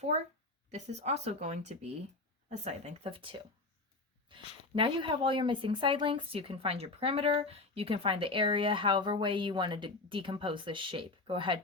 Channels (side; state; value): right; quieter; 3.2 dB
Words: this is also going to be a side length of 2. Now you have all your missing side lengths. You can find your perimeter. You can find the area, however way you want to decompose this shape. Go ahead,